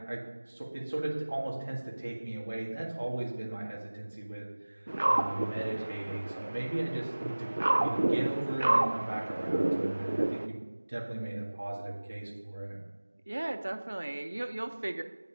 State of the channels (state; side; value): inverted; both; correlation -1.00